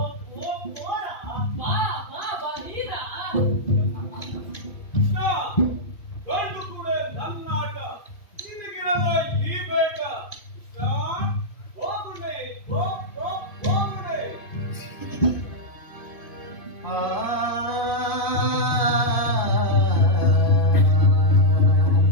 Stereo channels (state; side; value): late; right; 2.5 ms